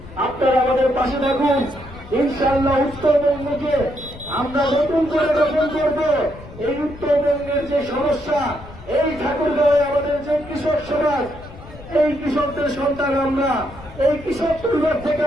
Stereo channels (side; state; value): left; noise; rumble, 17 dB below the sound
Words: আপনারা আমাদের পাশে থাকুন। ইনশাআল্লাহ উত্তরবঙ্গকে আমরা নতুন করে গঠন করব। এই উত্তরবঙ্গের যে সমস্যা, এই ঠাকুরগাঁওয়ে আমাদের যে কৃষক সমাজ, এই কৃষকদের সন্তান আমরা, এই কৃষক পরিবার থেকে